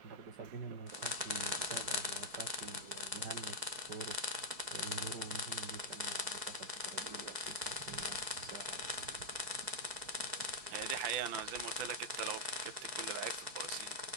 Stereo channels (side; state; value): left; late; 4.8 ms